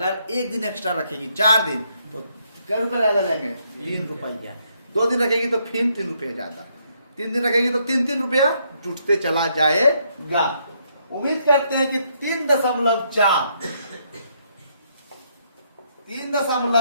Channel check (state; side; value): inverted; both; correlation -0.73